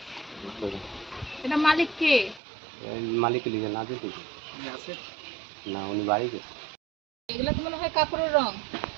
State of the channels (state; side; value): drops out; left; at 2.4 s